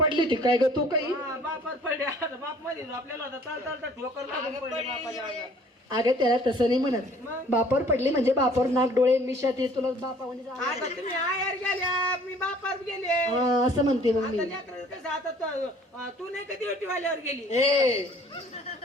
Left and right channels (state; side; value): normal; both; correlation 0.54